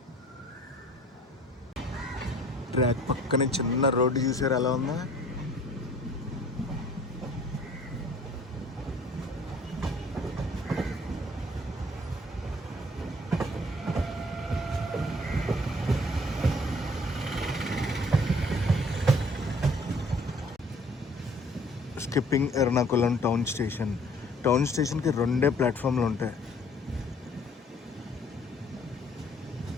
ట్రాక్ పక్కనే చిన్న రోడ్డు చూసారు ఎలా ఉందా? Skipping Ernakulam town station. Town స్టేషన్కి 2 ప్లాట్ఫామ్లు ఉంటాయి.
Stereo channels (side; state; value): both; normal; correlation 0.55